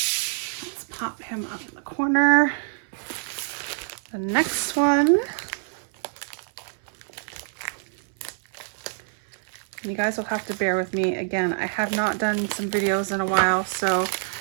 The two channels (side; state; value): left; silent; 61 dB below the other